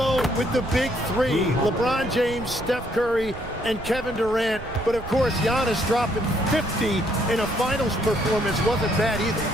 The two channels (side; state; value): right; noise; rumble, 13 dB below the sound